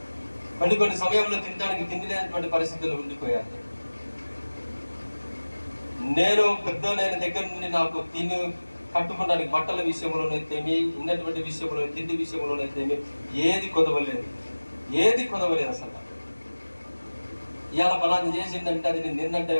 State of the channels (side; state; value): both; inverted; correlation -1.00